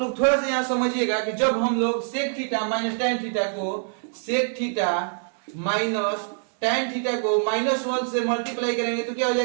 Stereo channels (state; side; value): silent; left; digital silence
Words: लोग थोड़ा सा यहाँ समझिएगा कि जब हम लोग sec theta minus tan theta को sec theta minus tan theta को -1 से मल्टीप्लाई करेंगे तो क्या हो